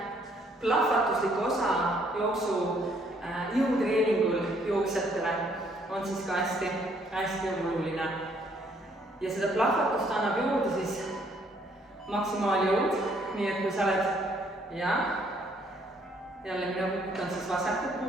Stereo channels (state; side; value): normal; both; correlation 0.66